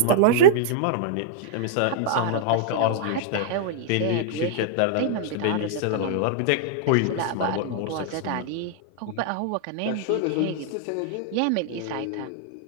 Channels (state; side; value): different; both; correlation -0.01